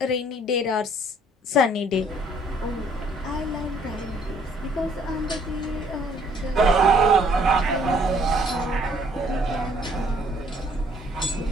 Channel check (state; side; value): normal; both; correlation 0.62